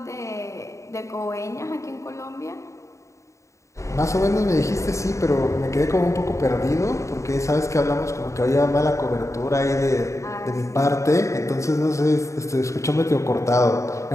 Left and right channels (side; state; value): right; late; 0.15 ms